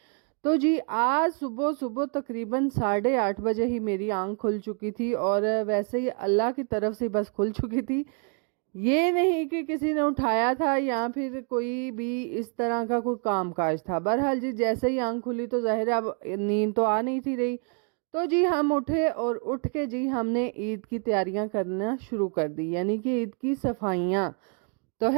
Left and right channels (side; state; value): left; quieter; 39.2 dB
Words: तो जी आज सुबह सुबह तकरीबन 8:30 बजे ही मेरी आंख खुल चुकी थी, और वैसे ही अल्लाह की तरफ से बस खुल चुकी थी। ये नहीं कि किसी ने उठाया था या फिर कोई भी इस तरह का कोई काम काज था। बहरहाल जी जैसे ही आंख खुली तो जाहिर है अब नींद तो आ नहीं थी रही। तो जी हम उठे और उठ के जी हमने ईद की तैयारियां करना शुरू कर दी, यानी कि ईद की सफाइयां। तो